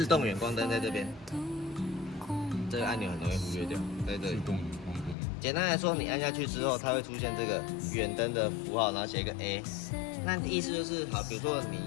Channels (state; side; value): drops out; right; at 5.2 s